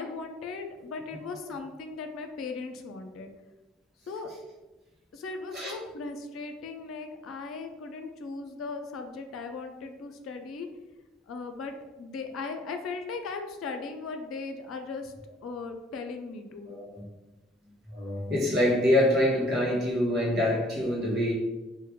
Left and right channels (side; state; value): both; normal; correlation 0.56